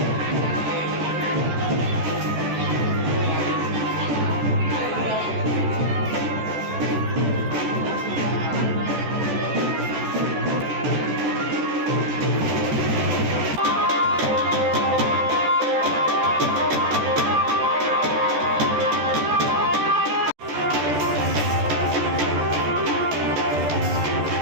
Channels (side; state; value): left; late; 14 ms